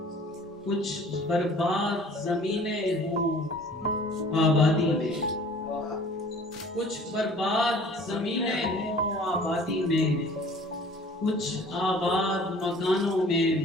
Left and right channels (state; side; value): normal; both; correlation 0.50